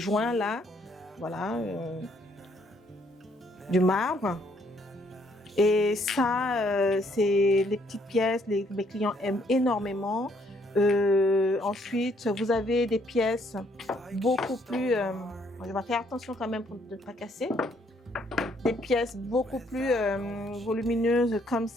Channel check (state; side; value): normal; both; correlation 0.68